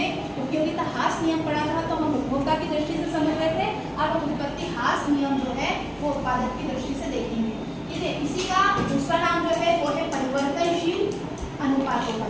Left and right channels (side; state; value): both; identical; correlation 1.00